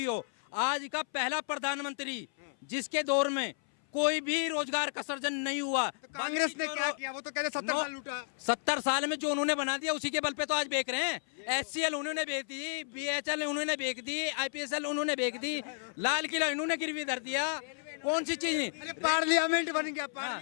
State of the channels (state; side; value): silent; right; 56 dB below the other